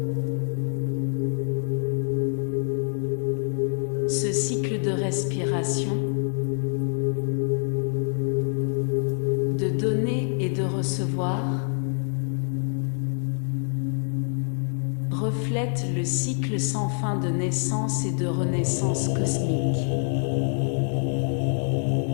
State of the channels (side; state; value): right; silent; 61 dB below the other